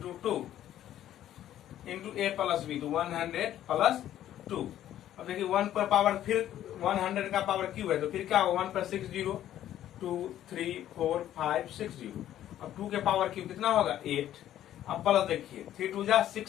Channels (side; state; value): right; quieter; 12.0 dB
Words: 2 into a plus b तो 100 प्लस 2। अब देखिए 1 पर पावर फिर 100 का पावर क्यूब है तो फिर क्या होगा 1 पर 6 0 2 3 4 5 6 0। अब 2 के पावर क्यूब कितना होगा 8, अब प्लस देखिए 3 2 जा